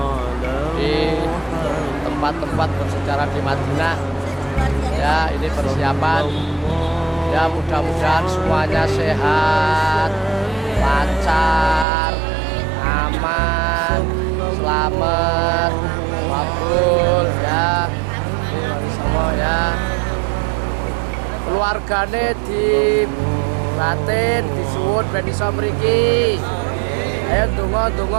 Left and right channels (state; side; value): drops out; left; at 11.9 s